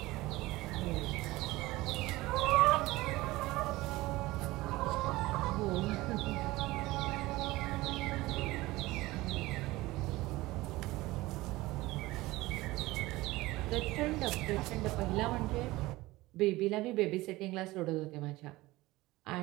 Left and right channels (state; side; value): quieter; left; 19.3 dB